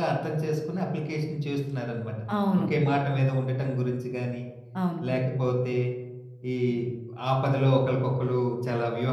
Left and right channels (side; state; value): both; identical; correlation 1.00